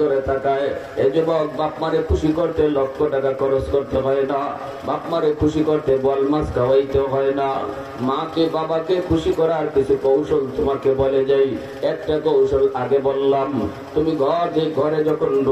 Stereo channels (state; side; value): identical; both; correlation 1.00